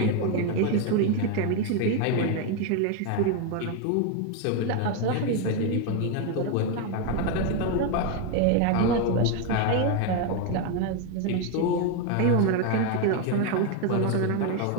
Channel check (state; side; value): different; both; correlation 0.02